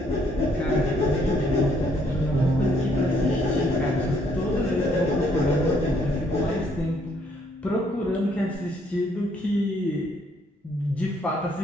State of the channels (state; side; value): normal; both; correlation 0.68